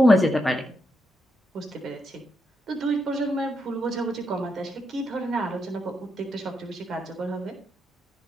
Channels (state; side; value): normal; both; correlation 0.82